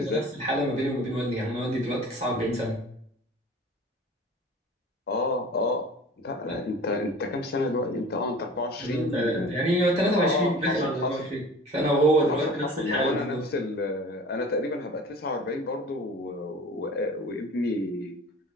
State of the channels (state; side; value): normal; both; correlation 0.42